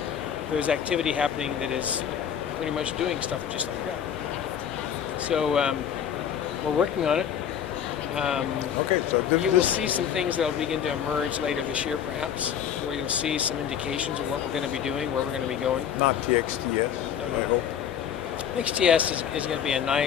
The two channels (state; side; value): quieter; right; 8.8 dB